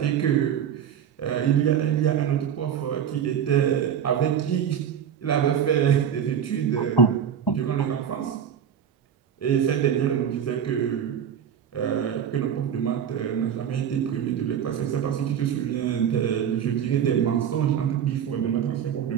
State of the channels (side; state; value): left; quieter; 8.5 dB